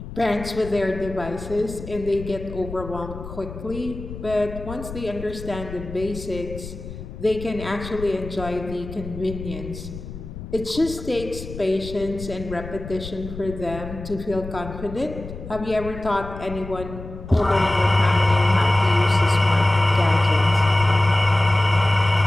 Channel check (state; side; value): noise; left; rumble, 11 dB below the sound